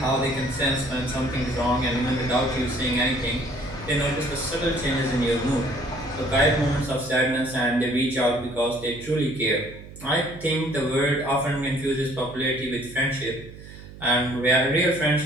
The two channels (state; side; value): noise; right; hum, 16 dB below the sound